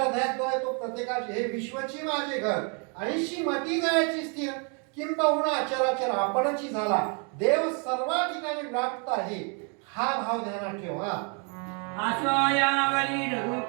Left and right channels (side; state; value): left; quieter; 37.7 dB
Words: हृदयात जो आहे तो प्रत्येकाचे हे विश्वची माझे घर आणि श्रीमती जायची स्थिर किंबहुना अचराचर आपणची झाला. देव सर्व ठिकाणी व्याप्त आहे हा भाव ध्यानात ठेवा. आसोयावरी